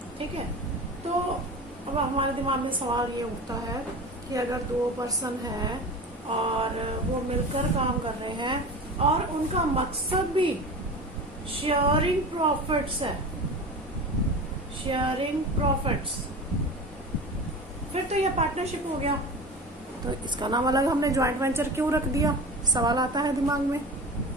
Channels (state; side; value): normal; both; correlation 0.32